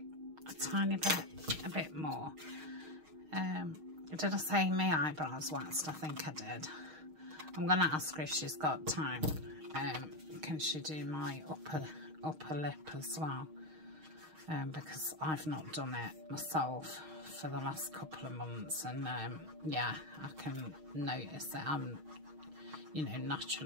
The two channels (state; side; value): late; left; 6.4 ms